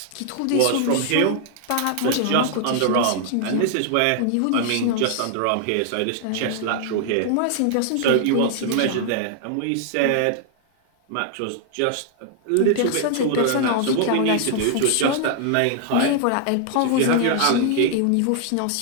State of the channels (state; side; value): different; both; correlation 0.00